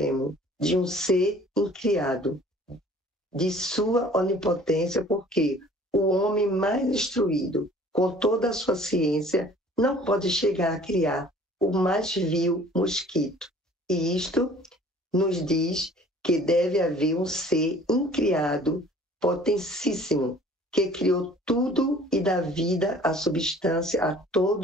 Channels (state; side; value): normal; both; correlation 0.51